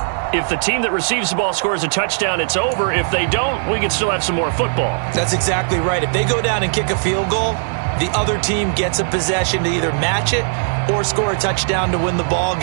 if the team that receives the ball scores a touchdown, it's over. If they don't, we can still have some more football. That's exactly right. If they go down and kick a field goal, the other team gets a possession to either match it or score a touchdown to win the ball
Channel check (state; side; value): silent; left; 62 dB below the other